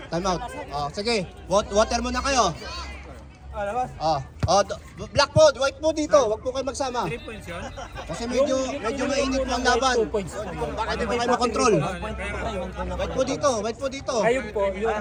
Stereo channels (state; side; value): identical; both; correlation 1.00